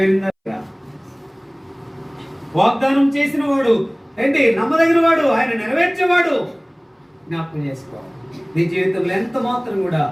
వాగ్దానం చేసిన వాడు ఏంటి? నమ్మదగిన వాడు, ఆయన నెరవేర్చేవాడు. జ్ఞాపకం చేసుకోవాలి. నీ జీవితంలో ఎంత మాత్రం కూడా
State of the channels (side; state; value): both; identical; correlation 1.00